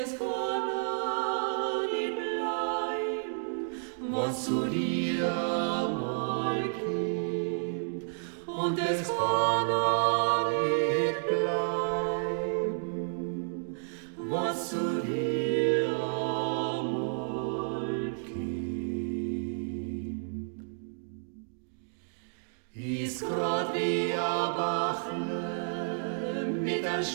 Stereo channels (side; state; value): left; silent; digital silence